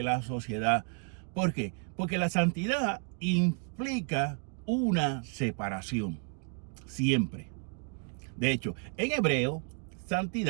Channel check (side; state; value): left; quieter; 39.2 dB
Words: la sociedad. ¿Por qué? Porque la santidad implica una separación, siempre. De hecho, en hebreo,